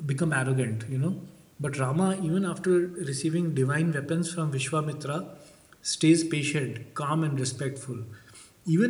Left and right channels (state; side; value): identical; both; correlation 1.00